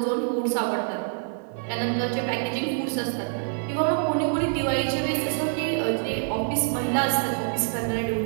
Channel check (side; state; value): left; silent; 57 dB below the other